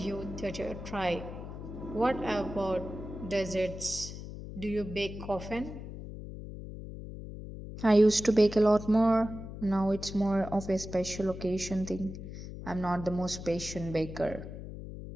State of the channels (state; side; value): noise; left; hum, 10 dB below the sound